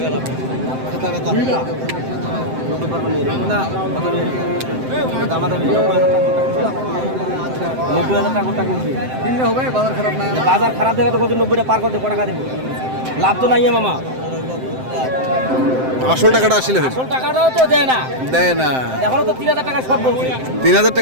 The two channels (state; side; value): late; left; 7.7 ms